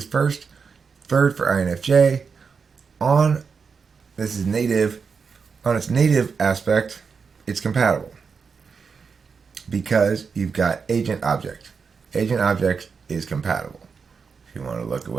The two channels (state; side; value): quieter; left; 5.5 dB